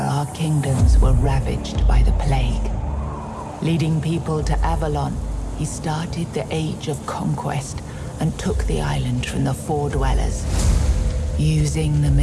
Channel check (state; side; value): identical; both; correlation 1.00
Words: our kingdoms were ravaged by the plague. Leading people to Avalon, he started the Age of Conquest and took the island from the Four Dwellers. Using the